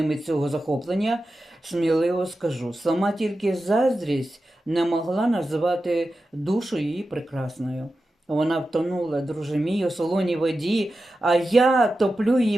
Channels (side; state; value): both; normal; correlation 0.92